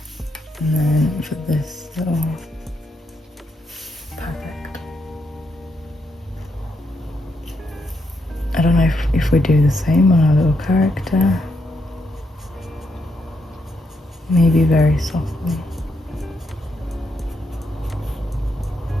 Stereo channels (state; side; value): normal; both; correlation 0.79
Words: And then for this little, perfect. I don't know if we do the same on our little character. Maybe very softly.